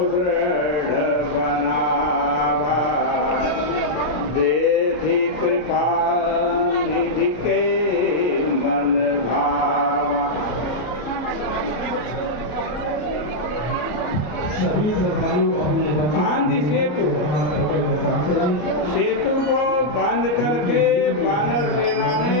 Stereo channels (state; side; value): late; right; 33 ms